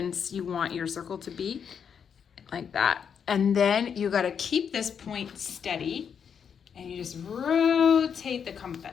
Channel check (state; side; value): quieter; right; 7.3 dB